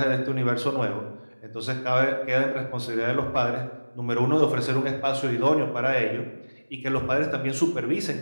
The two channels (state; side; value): inverted; both; correlation -1.00